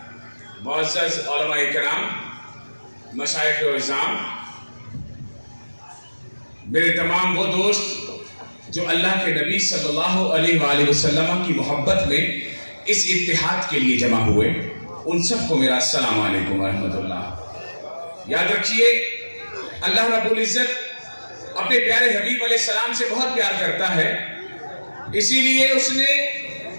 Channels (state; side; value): inverted; both; correlation -1.00